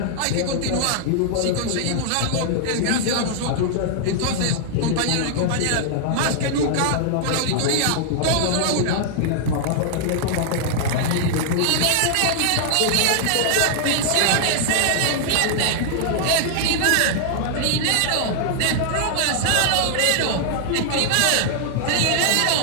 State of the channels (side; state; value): both; different; correlation -0.01